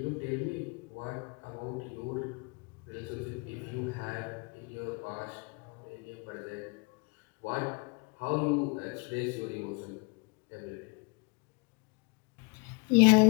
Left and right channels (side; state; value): right; quieter; 30.2 dB